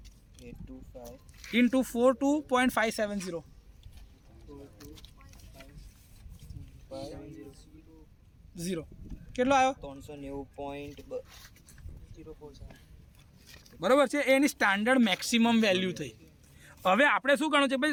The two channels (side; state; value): both; identical; correlation 1.00